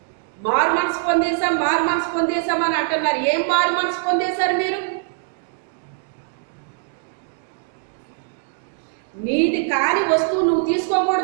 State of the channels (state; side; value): silent; left; digital silence